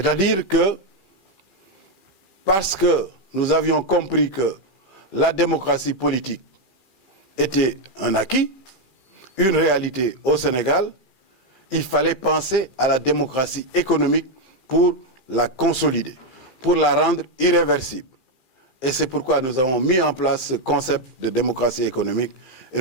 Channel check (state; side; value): late; left; 2.4 ms